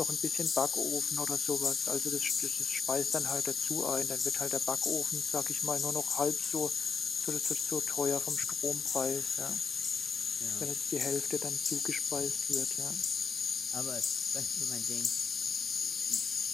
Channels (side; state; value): right; quieter; 5.6 dB